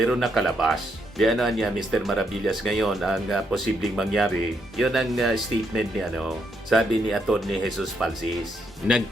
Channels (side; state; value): both; normal; correlation 0.77